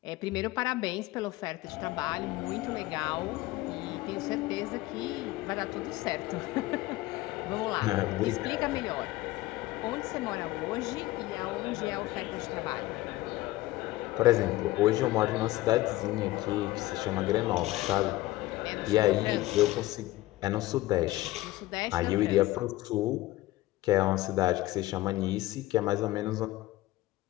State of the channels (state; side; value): quieter; right; 17.6 dB